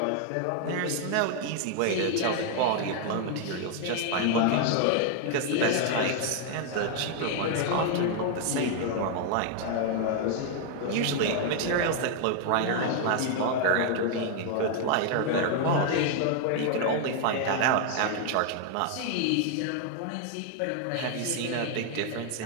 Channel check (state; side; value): different; both; correlation 0.00